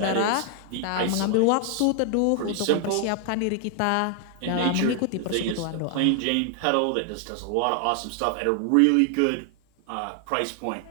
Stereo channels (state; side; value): different; both; correlation 0.00